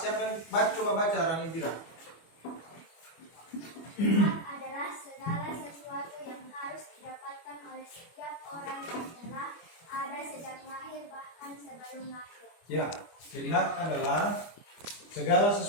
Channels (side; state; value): right; late; 25 ms